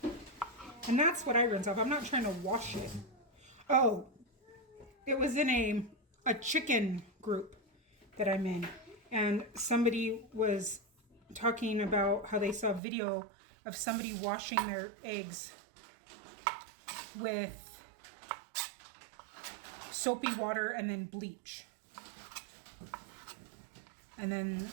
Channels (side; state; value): left; drops out; at 12.8 s